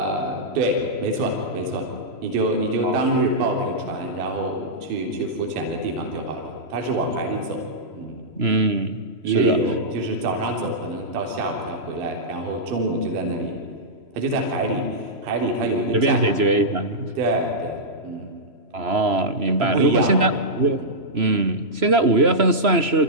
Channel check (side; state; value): left; late; 3.0 ms